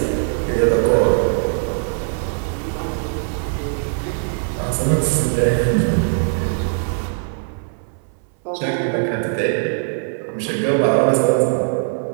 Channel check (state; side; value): silent; left; 64 dB below the other